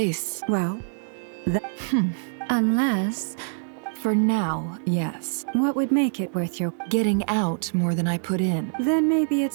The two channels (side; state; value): left; silent; digital silence